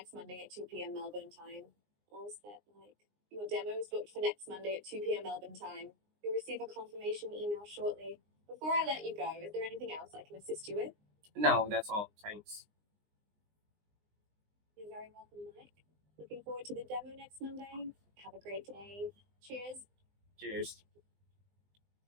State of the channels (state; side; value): late; left; 19 ms